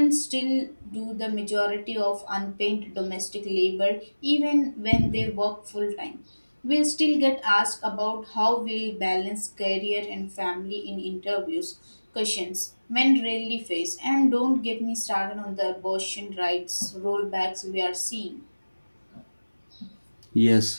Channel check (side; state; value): both; inverted; correlation -1.00